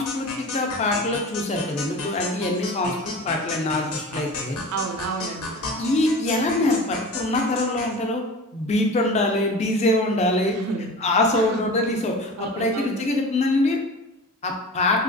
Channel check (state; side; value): normal; both; correlation 0.35